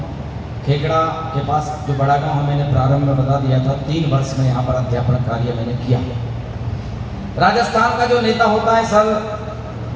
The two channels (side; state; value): both; identical; correlation 1.00